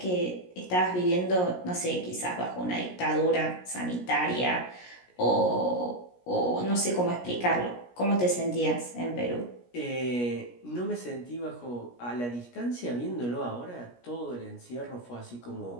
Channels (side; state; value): right; late; 17 ms